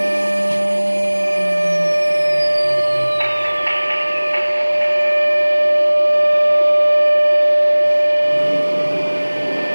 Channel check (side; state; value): both; inverted; correlation -1.00